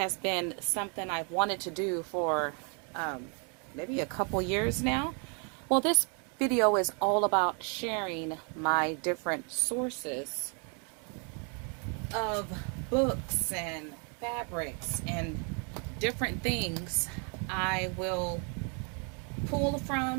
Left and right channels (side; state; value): left; quieter; 38.3 dB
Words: been something I've wanted to do for maybe a couple years now. Well, this video is all about sharing my different sources of books and fabrics and different things I will pull